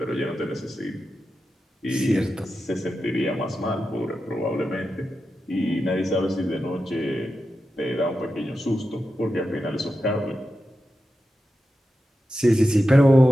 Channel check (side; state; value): both; normal; correlation 0.90